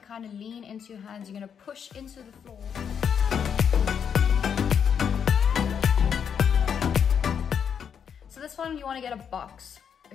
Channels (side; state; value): right; quieter; 7.6 dB